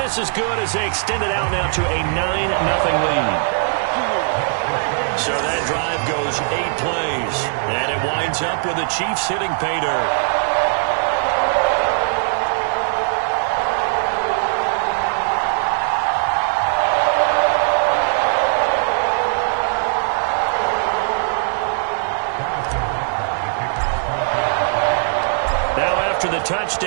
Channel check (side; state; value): left; silent; digital silence